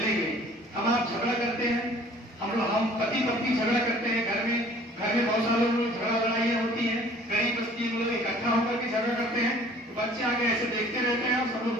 हम आप झगड़ा करते हैं, हम पति पत्नी झगड़ा करते हैं, घर में बहुत सारे लोग झगड़ा लड़ाइयाँ होती हैं, गरीब बस्ती में लोग इकट्ठा होकर के झगड़ा करते हैं, तो बच्चे आगे ऐसे देखते रहते हैं और सब लोग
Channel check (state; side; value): normal; both; correlation 0.52